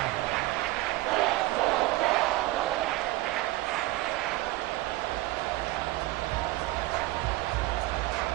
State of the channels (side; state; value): left; quieter; 18.7 dB